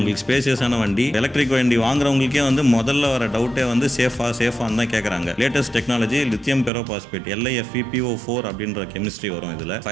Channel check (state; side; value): drops out; left; at 6.7 s